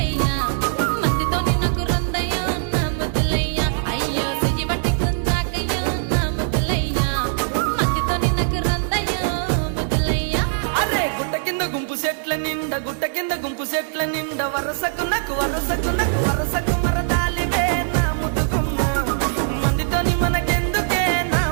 మందితో నాకు రొందయ్యో నా ముద్దులయ్యా అయ్యో చెయ్యి పట్టి గుంజాకయ్యో నా ముద్దులయ్యా మందితో నాకు రొందయ్యో ముద్దులయ్యా. అరే గుట్ట కింద గుంపు సెట్ల నిండా గుట్ట కింద గుంపు సెట్ల నిండా వరసకు వరసకు మరదాలివే నా ముద్దుగుమ్మ మందితోని మనకెందుకే నా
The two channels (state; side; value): silent; left; digital silence